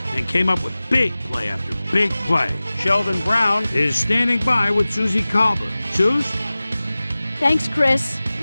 and came up with big play after big play. Sheldon Brown is standing by with Susie Colbert. Suze? Thanks, Chris.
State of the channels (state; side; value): inverted; both; correlation -0.98